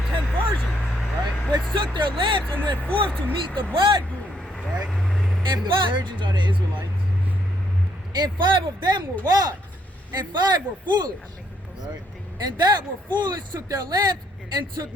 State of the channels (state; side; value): normal; both; correlation 0.71